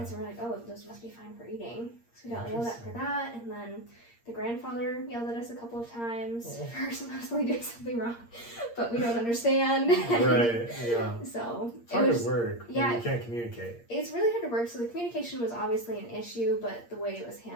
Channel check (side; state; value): right; late; 8.6 ms